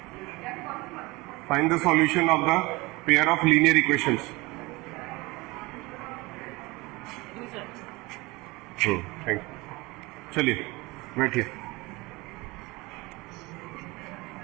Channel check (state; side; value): quieter; left; 23.2 dB